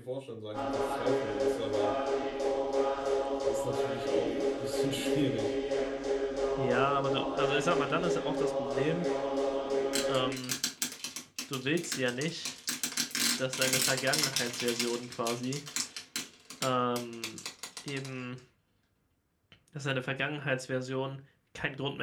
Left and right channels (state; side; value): identical; both; correlation 1.00